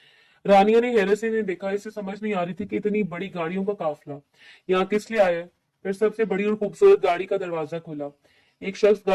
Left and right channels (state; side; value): identical; both; correlation 1.00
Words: रानिया ने हैरत से देखा। इसे समझ नहीं आ रही थी कि इतनी बड़ी गाड़ियों का काफिला यहाँ किस लिए आया है। फिर सबसे बड़ी और खूबसूरत गाड़ी का दरवाजा खुला। एक शख्स